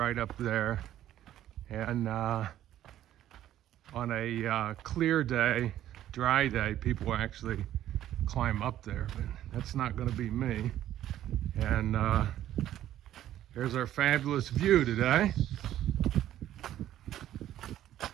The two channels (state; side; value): quieter; left; 12.3 dB